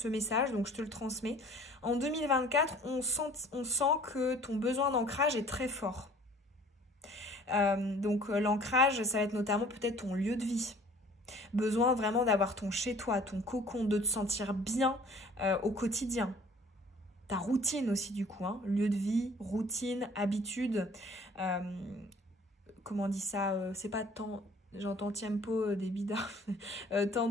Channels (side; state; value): both; normal; correlation 0.51